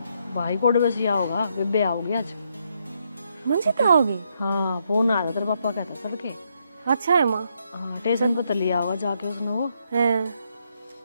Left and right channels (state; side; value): inverted; both; correlation -0.76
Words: भाई को बस या होगा, बेबे आओगी आज। मंजिता होगी? हाँ फोन आया तेरे पापा कहता चल के। अच्छा है माँ। हाँ स्टेशन पर लिया होगा जाके उसने वो है।